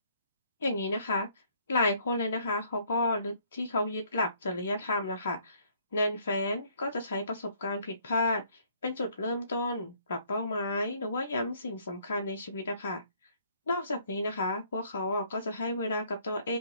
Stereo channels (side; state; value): both; inverted; correlation -0.64